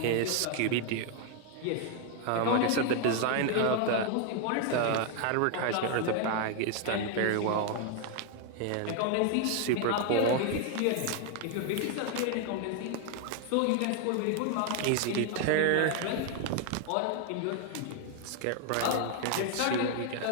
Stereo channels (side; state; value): both; different; correlation 0.00